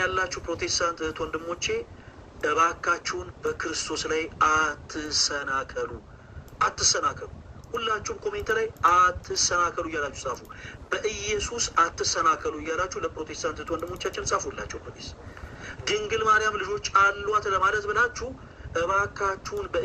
ያላችሁ ፕሮቴስታንት እህት ወንድሞቼ እባካችሁን በክርስቶስ ላይ አትሰናከሉ፣ አትሰናከሉ። ሁላችሁም ኮሜንት ላይ አትሰናከሉ እያላችሁ ጻፉ። በኢየሱስ አትሰናከሉ እያላችሁ ለፕሮቴስታንት እህት ወንድሞቻችን ጻፉላቸው። ፕሊዝ ድንግል ማርያም ልጆች አሏት ለማለት ብላችሁ እባካችሁን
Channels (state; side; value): identical; both; correlation 1.00